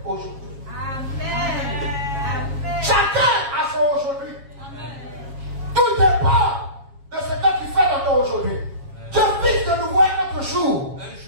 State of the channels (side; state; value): left; late; 7.3 ms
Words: aujourd'hui. Amen. Chacun a son aujourd'hui. Tout dépend de ce que tu fais dans ton aujourd'hui. Dieu fixe de nouveau un autre jour.